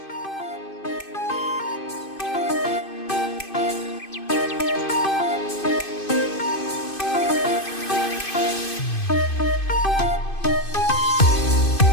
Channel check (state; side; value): late; right; 2.5 ms